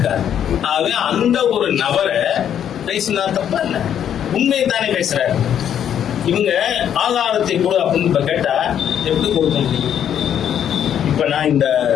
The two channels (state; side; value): quieter; right; 9.4 dB